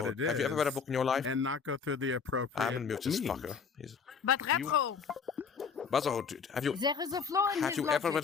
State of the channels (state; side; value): quieter; right; 5.9 dB